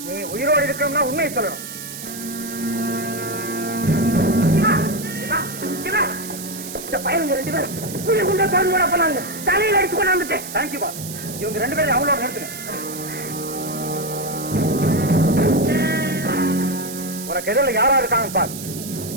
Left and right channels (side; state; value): right; noise; hiss, 10 dB below the sound